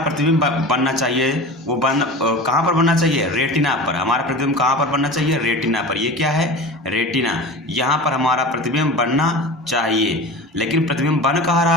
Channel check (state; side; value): normal; both; correlation 0.33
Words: बनना चाहिए वो कहाँ पर बनना चाहिए? रेटिना पर। हमारा प्रतिबिंब कहाँ पर बनना चाहिए? रेटिना पर। ये क्या है? रेटिना। यहाँ पर हमारा प्रतिबिंब बनना चाहिए, लेकिन प्रतिबिंब बन कहाँ